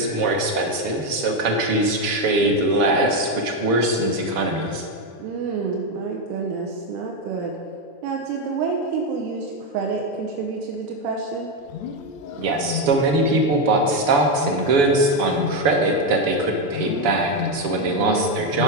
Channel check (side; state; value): left; late; 7.0 ms